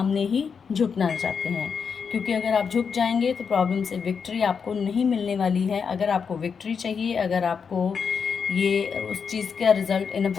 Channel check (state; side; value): quieter; right; 6.2 dB